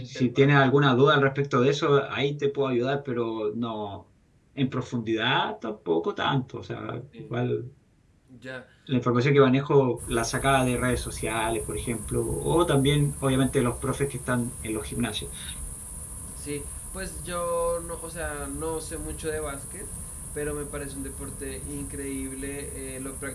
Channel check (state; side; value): identical; both; correlation 1.00